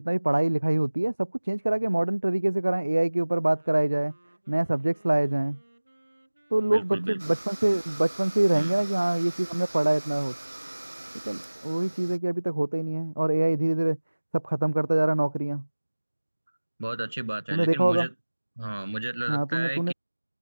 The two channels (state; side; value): inverted; both; correlation -1.00